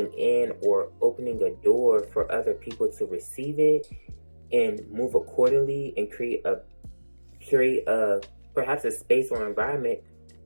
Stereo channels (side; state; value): both; inverted; correlation -1.00